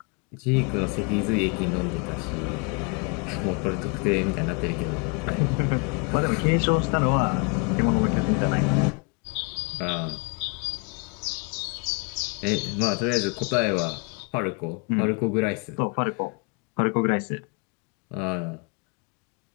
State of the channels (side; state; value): right; quieter; 32.8 dB